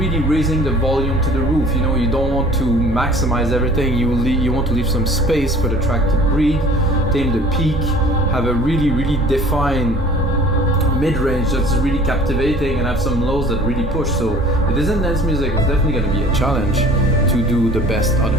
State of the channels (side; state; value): both; normal; correlation 0.48